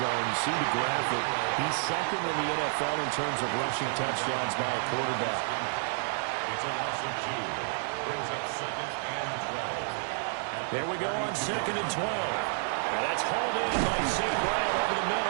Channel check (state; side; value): silent; left; 58 dB below the other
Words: You see the graphic. He's 2nd in the NFL in terms of rushing touchdowns by a quarterback. It's a loss of 2. Brings up 2nd and 12. There we go on 2nd and 12. And that's hauled in by St. Brown over the